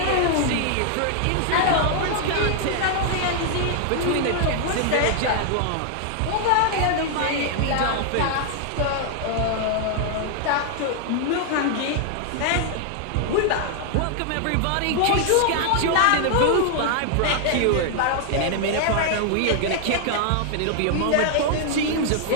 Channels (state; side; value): different; both; correlation 0.00